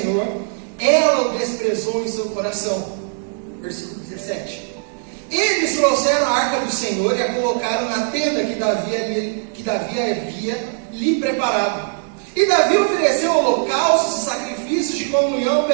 ela o desprezou em seu coração. Versículo 17. Eles trouxeram a arca do Senhor e a colocaram na tenda que Davi havia lhe preparado. E Davi ofereceu holocaustos e sacrifícios de comunhão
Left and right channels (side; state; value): left; silent; 60 dB below the other